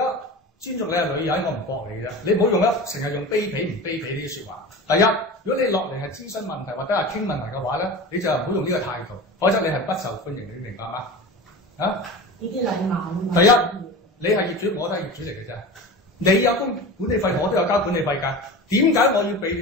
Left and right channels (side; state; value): both; normal; correlation 0.32